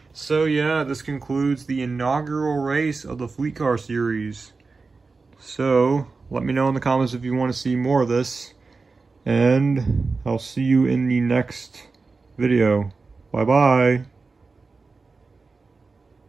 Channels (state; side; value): quieter; left; 4.2 dB